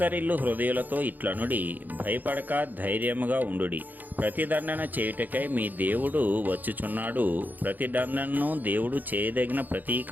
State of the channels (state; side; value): late; left; 0.085 ms